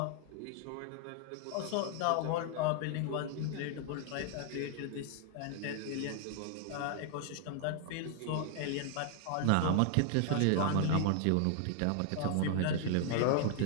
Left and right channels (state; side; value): different; both; correlation 0.00